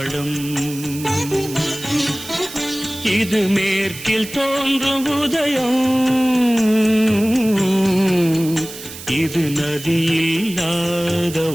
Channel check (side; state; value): right; noise; hiss, 13 dB below the sound